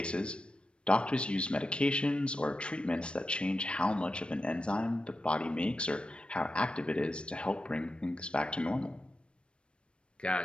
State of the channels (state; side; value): late; right; 0.057 ms